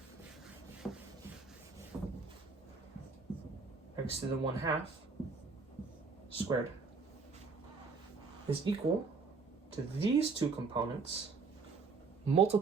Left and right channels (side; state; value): left; quieter; 4.6 dB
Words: x to the 1/2 squared is equal to these two components